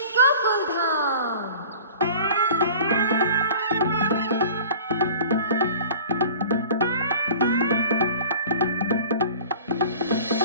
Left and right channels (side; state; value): both; inverted; correlation -0.43